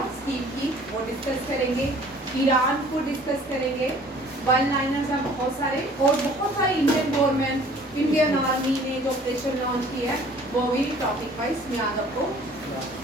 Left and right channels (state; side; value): normal; both; correlation 0.52